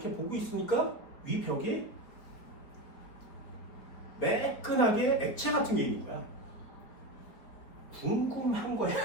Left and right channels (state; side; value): late; right; 4.8 ms